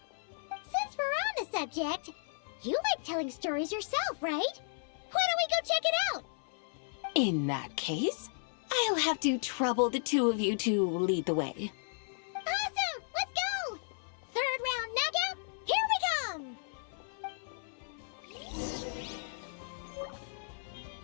Since we're on the subject, you like telling stories yourself, right? Why don't we go check it out? In that case, I'll have to trouble the two of you to lead the way. Awesome! Let's go! Third round knockout, here we come!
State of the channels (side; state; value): right; silent; 55 dB below the other